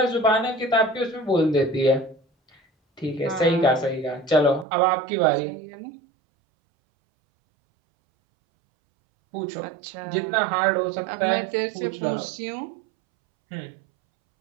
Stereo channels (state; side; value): drops out; left; at 4.7 s